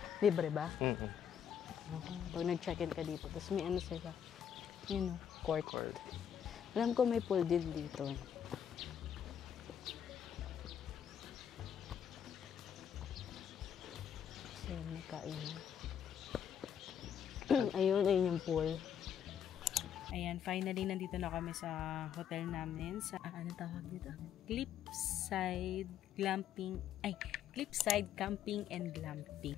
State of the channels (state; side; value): quieter; right; 8.7 dB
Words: Libre ba? Pag nag-check-in ka dito, tapos may sila. Court. Alam ko may pool din dito. So, may kainan. Ayun yung pool. Ayan, finally, nandito na kami sa hotel namin. Sa, ano tawag dito? Cliffside Camping and Glamping.